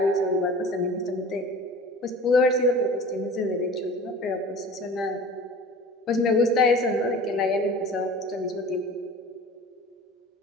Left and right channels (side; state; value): both; normal; correlation 0.40